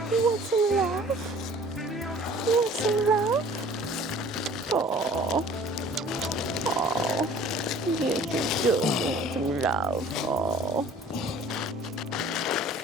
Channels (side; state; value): both; normal; correlation 0.50